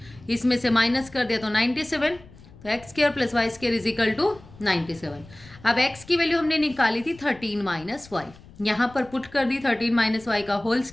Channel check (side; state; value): left; noise; rumble, 22 dB below the sound